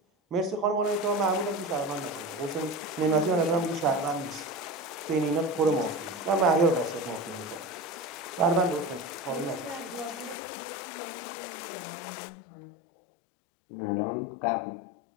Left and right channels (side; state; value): right; drops out; at 10.4 s